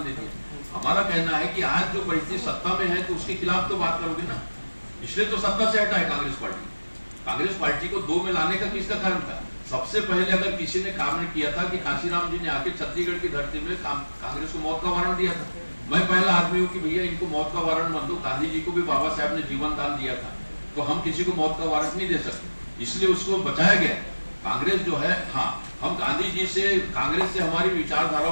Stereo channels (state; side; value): inverted; both; correlation -1.00